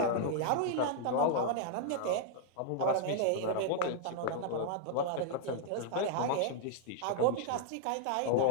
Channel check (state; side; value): different; both; correlation 0.00